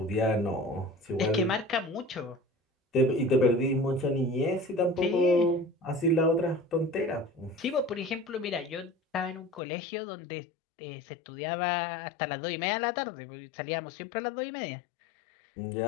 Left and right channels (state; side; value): drops out; right; at 9.6 s